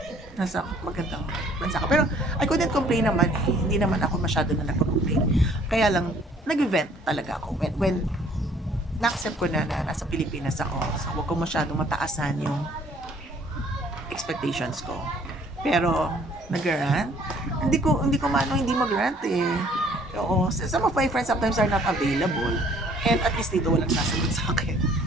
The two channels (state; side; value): normal; both; correlation 0.58